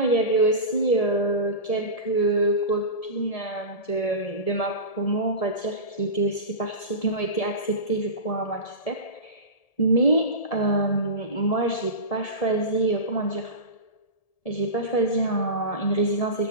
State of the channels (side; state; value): right; late; 1.7 ms